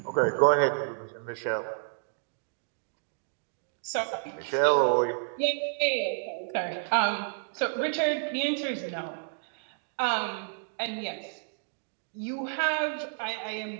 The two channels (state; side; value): silent; left; digital silence